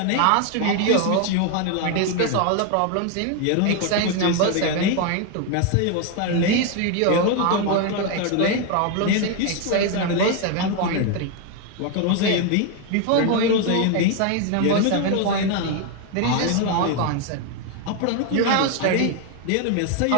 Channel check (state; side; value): different; both; correlation 0.01